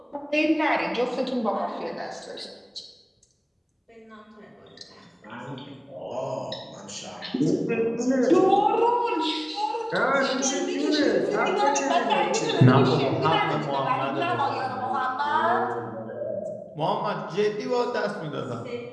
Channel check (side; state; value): both; identical; correlation 1.00